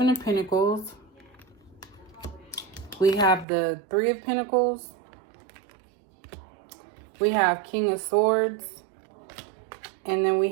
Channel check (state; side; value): drops out; left; at 3.5 s